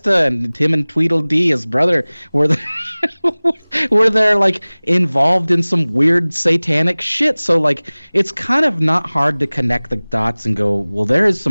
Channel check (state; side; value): inverted; both; correlation -1.00